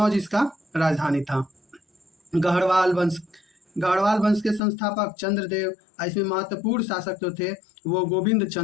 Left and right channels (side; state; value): right; drops out; at 4.6 s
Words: इसका राजधानी था। गढ़वाल वंश। गढ़वाल वंश के संस्थापक चंद्रदेव। इसमें महत्वपूर्ण शासक जो थे वो गोविंद